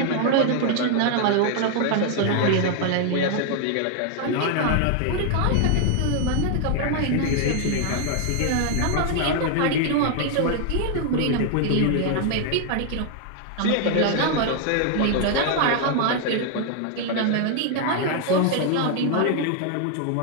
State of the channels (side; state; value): both; different; correlation 0.00